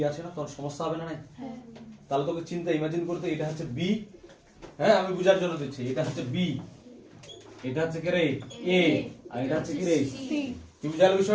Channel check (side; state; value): both; identical; correlation 1.00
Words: আছে না, তখন সমস্যা হবে না। তাহলে তোকে চিন্তা ইমাজিন করতে, এটা হচ্ছে b, হ্যাঁ আমি বুঝার জন্য দিচ্ছি, এটা হচ্ছে b, এটা হচ্ছে কি রে a, আর এটা হচ্ছে কি রে c। কি বুঝালো